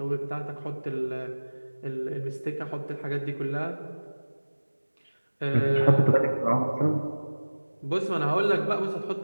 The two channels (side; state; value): both; inverted; correlation -1.00